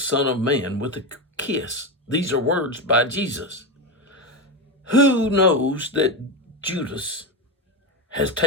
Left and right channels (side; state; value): both; normal; correlation 0.16